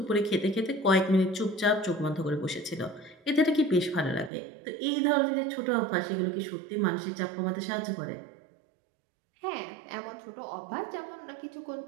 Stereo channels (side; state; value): left; drops out; at 4.3 s